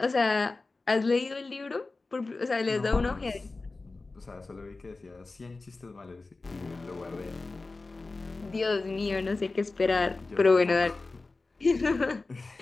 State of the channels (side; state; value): right; quieter; 3.5 dB